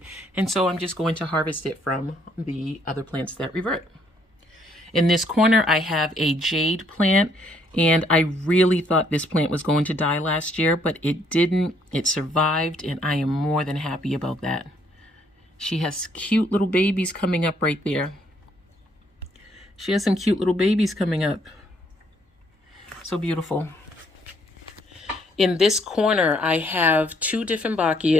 And so I'm just going to harvest it from the other plants that revert. In this corner, I have a jade plant, and I really thought this plant was going to die last year, but it didn't. It survived, and I am more than happy about that. She has cute little babies coming up right there. She has some cute little babies coming up. So beautiful. In this corner, I have 2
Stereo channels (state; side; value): normal; both; correlation 0.68